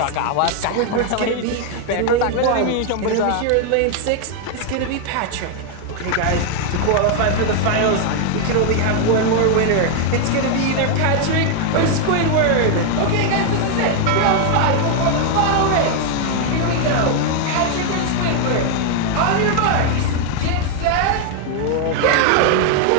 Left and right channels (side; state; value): both; different; correlation 0.00